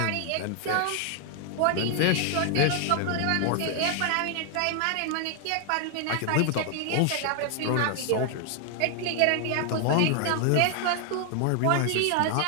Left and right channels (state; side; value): different; both; correlation 0.00